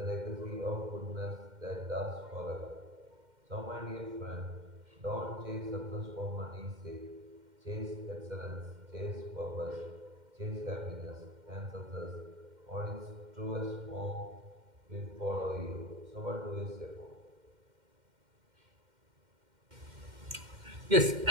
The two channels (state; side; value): late; left; 2.1 ms